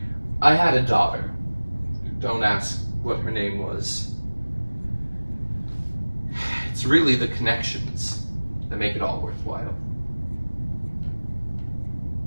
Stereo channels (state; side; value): inverted; both; correlation -1.00